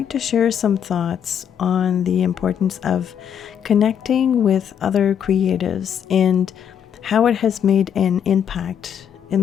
to share some thoughts on the importance of connecting with other creatives and how it has made an impact in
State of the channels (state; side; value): quieter; right; 8.5 dB